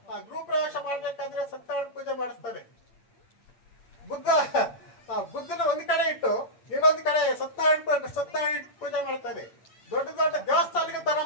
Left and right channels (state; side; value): late; right; 8.6 ms